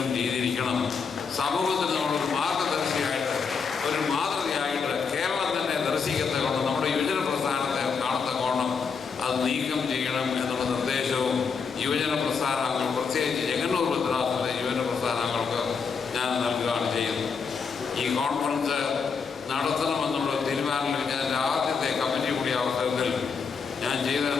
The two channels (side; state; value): right; quieter; 5.6 dB